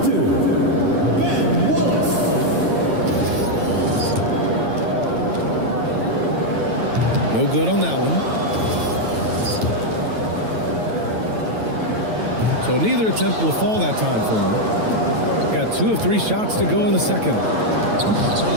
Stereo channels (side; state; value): left; late; 9.1 ms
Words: two, Ben Willis. No good on that one. So neither attempt will fall that time for him. Got 2 of 3 shots to go in the second.